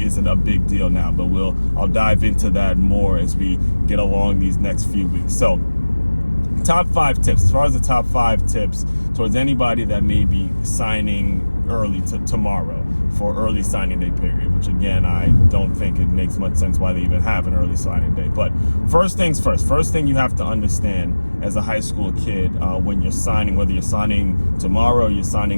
isn't a big deal now, but I'll dive into that more as we get along these next few weeks. So, top 5 tips. As far as the top 5 tips towards anybody that may be signing early tomorrow for early signing day period, which again, I don't think it makes much sense why they even have an early signing day. But first things first, first thing you have to understand as a high school kid, when you're signing, whether you're signing tomorrow or you're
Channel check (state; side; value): inverted; both; correlation -1.00